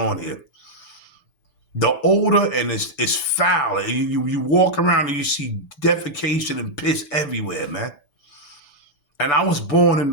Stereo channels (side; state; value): right; late; 6.1 ms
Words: here. The odor and it's foul. You walk around and you see defecation and piss everywhere, man. And I was born